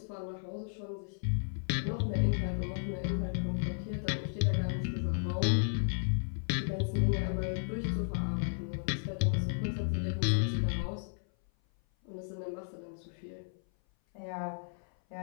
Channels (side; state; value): right; silent; 55 dB below the other